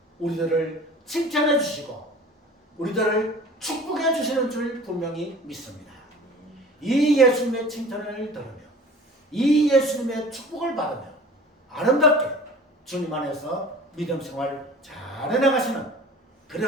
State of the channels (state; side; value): normal; both; correlation 0.43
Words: 우리들을 칭찬해 주시고 우리들을 축복해 주시는 줄 분명히 믿습니다. 이 예수님의 칭찬을 들으며 이 예수님의 축복을 받으며 아름답게 주님 안에서 믿음 생활 잘 해나가시는